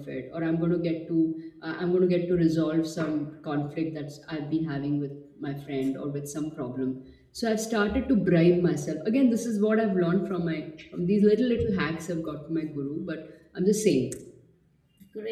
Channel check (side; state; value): both; identical; correlation 1.00